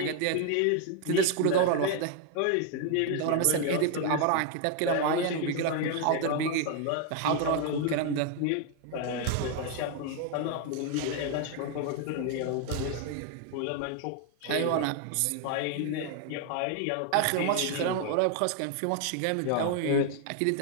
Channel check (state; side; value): different; both; correlation 0.01